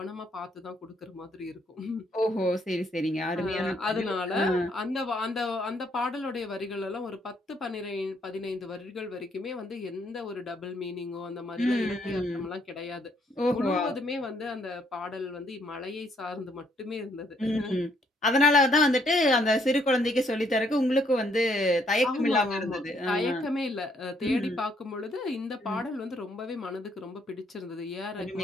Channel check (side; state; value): both; normal; correlation 0.69